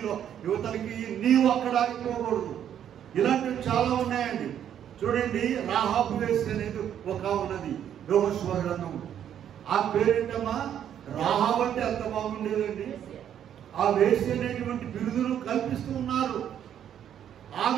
యువతలకి, నీవు అక్కడ ఆగిపోకూడదు. ఇలాంటివి చాలా ఉన్నాయండి. చూడండి, రాహాబు వేశ్య అనేది ఒక ఉన్నది యెహోషువ గ్రంథము. ఆ పేరేంటమ్మా? రాహాబు అంటే అంత బాగుండేదండి. ఆ వేశ్య అనేటువంటి బిరుదును కల్పిస్తూ ఉన్నారు.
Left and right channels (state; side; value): quieter; left; 9.7 dB